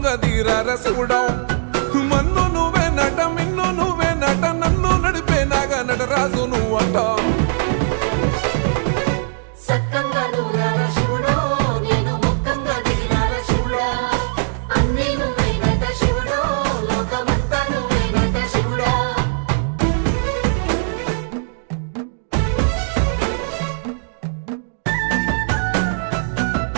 దీరార శివుడో మన్ను నువ్వే నట మిన్ను నువ్వే నట నన్ను నడిపే నాగా నటరాజు నువ్వంట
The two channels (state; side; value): silent; left; digital silence